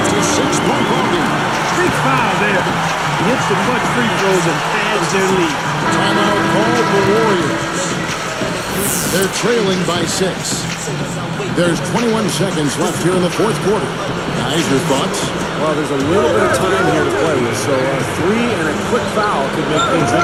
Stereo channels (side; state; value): left; noise; rumble, 23 dB below the sound